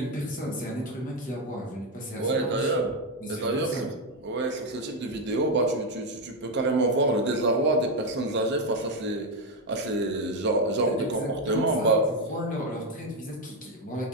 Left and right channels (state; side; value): normal; both; correlation 0.07